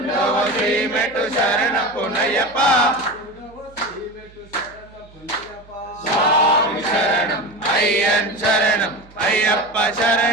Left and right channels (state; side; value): noise; right; hum, 25 dB below the sound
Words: శ్రీమెట్టు శరణ పునయ్యప్ప స్వామి శరణం అయ్యన్ శరణం అయ్యప్ప